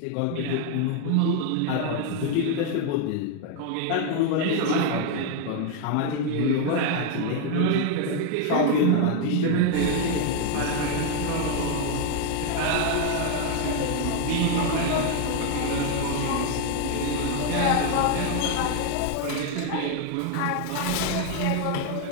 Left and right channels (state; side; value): different; both; correlation 0.01